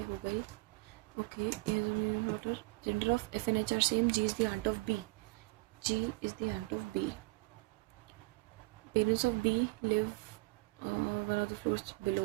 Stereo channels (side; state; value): left; quieter; 24.4 dB